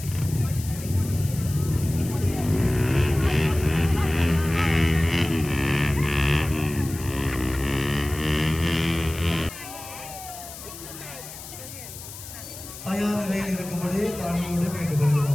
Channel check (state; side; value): noise; left; hiss, 13 dB below the sound